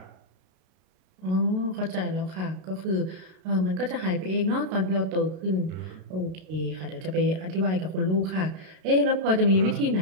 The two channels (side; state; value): left; late; 32 ms